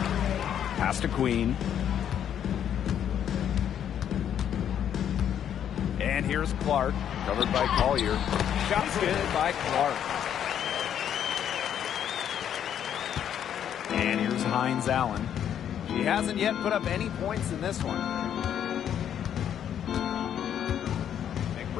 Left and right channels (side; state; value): right; quieter; 9.5 dB